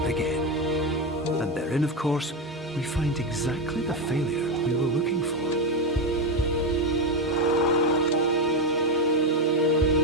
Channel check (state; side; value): normal; both; correlation 0.11